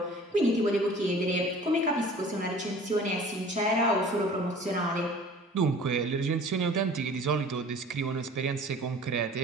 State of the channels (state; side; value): normal; both; correlation 0.46